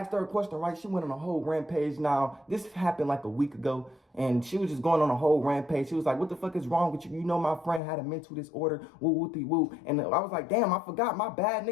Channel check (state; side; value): drops out; right; at 7.8 s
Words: her a question, right? She went on a whole rampage. Now, this happened like a week ago, and she was just going on a whole rampage. She was like, what the fuck is wrong with you? You know my friend had a mental disorder, woo. And I was like, damn, I forgot, my bad,